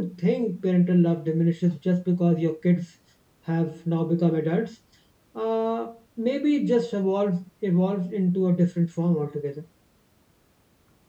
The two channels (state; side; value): identical; both; correlation 1.00